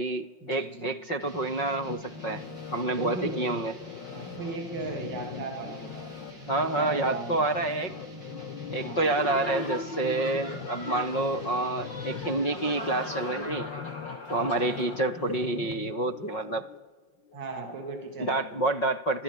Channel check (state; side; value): late; right; 5.6 ms